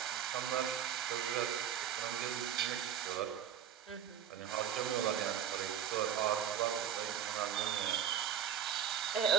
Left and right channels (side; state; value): left; quieter; 9.3 dB